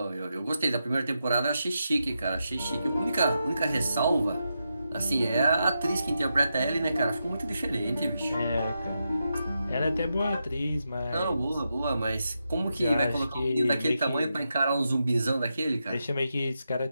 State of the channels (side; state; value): both; inverted; correlation -0.86